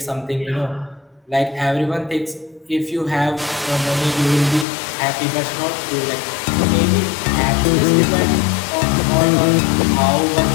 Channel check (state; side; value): drops out; right; at 4.7 s